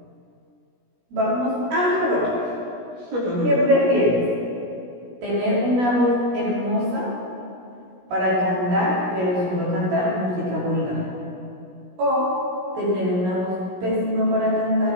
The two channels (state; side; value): late; left; 16 ms